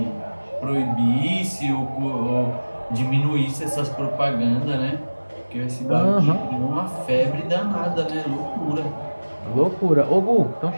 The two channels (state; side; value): inverted; both; correlation -1.00